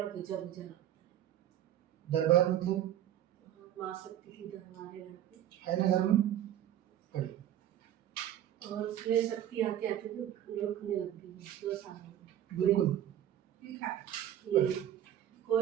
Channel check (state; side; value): quieter; left; 11.3 dB